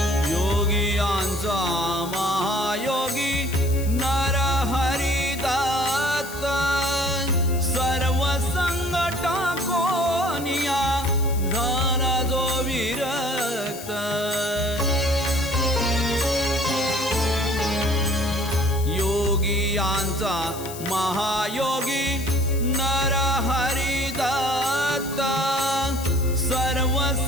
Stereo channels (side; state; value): left; noise; hiss, 13 dB below the sound